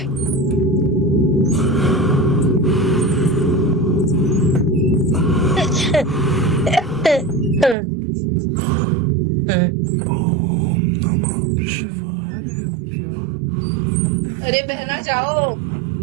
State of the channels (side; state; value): left; drops out; at 7.8 s